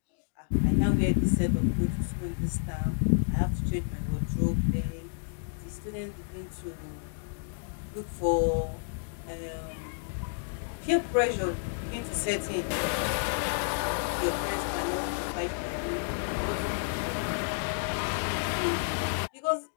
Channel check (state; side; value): silent; right; digital silence